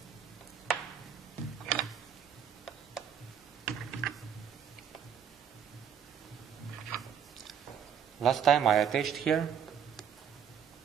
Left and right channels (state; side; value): quieter; left; 8.3 dB